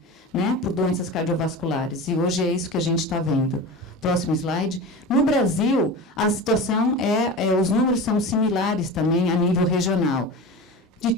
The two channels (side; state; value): both; normal; correlation 0.30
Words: né, por doenças cardiovasculares. E hoje é isso que a gente está vendo. Próximo slide. No Brasil, a situação os números são similares também a nível regional. De